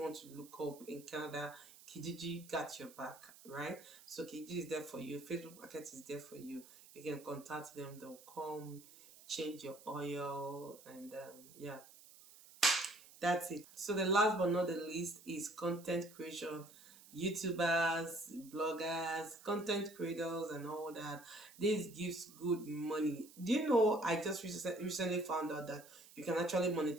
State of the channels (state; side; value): noise; right; hiss, 21 dB below the sound